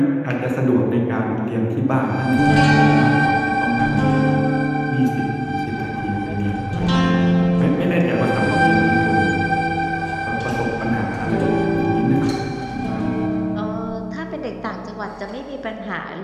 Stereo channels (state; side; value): identical; both; correlation 1.00